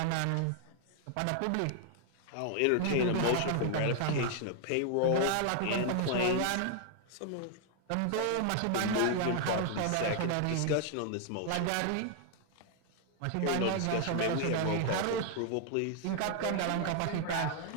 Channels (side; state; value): both; different; correlation 0.00